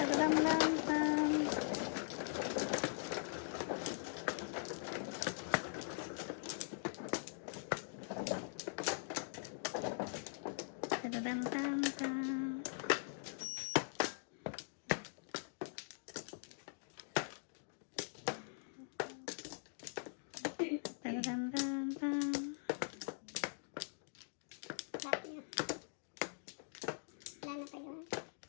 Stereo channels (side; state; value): right; silent; digital silence